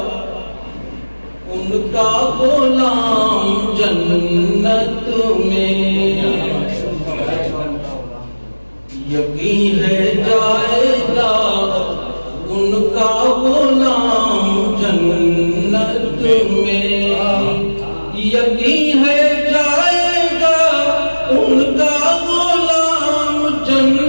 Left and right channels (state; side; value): inverted; both; correlation -1.00